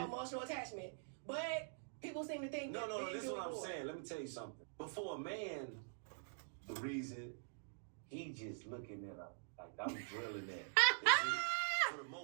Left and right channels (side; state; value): left; silent; digital silence